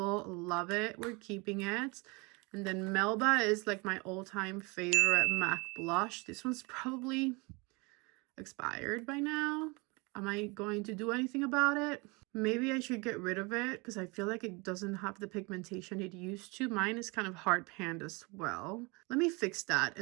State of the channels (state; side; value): quieter; left; 27.9 dB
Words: Love it. We're keeping it. And then Melba is like my all-time favorite MAC blush. This one's probably expired by now. Am I going to do anything about it? Maybe I should get rid of it because I feel like it doesn't have the pigmentation it used to. Mine is kind of hard panned as well. Let me fix that